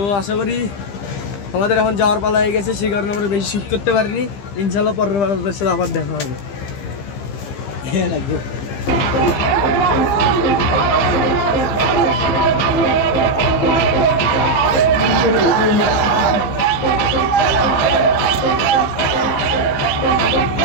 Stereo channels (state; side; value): late; right; 15 ms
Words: আশা করি আমাদের এখন যাওয়ার পালা হয়ে গেছে, সেই কারণে আমরা বেশি শ্যুট করতে পারিনি। ইনশাল্লাহ পরের বার আপনাদের সাথে আবার দেখা হবে। হ্যাঁ লাগবে।